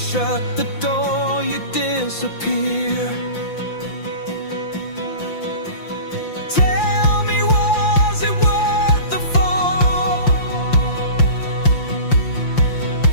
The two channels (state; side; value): late; right; 5.8 ms